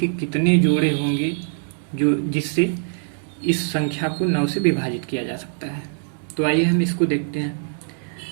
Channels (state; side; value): silent; left; digital silence